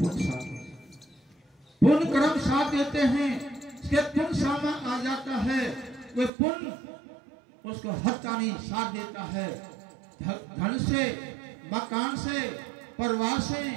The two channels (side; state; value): left; drops out; at 6.3 s